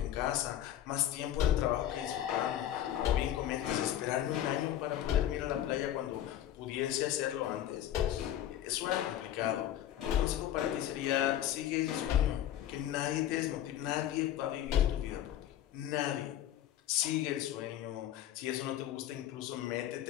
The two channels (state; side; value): quieter; right; 11.8 dB